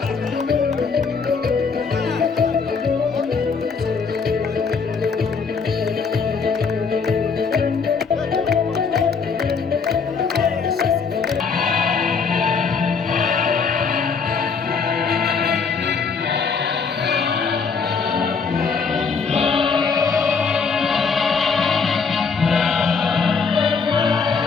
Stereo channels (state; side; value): quieter; right; 5.4 dB